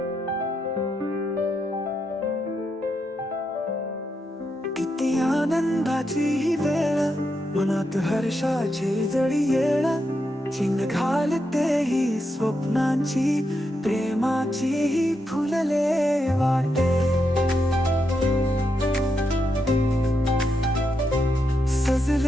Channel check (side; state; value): both; normal; correlation 0.83